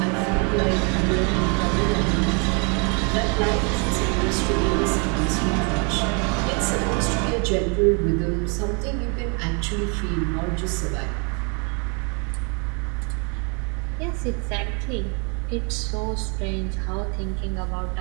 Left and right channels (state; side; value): quieter; left; 34.9 dB